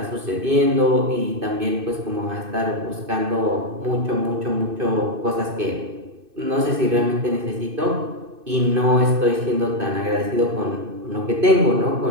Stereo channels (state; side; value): late; left; 2.6 ms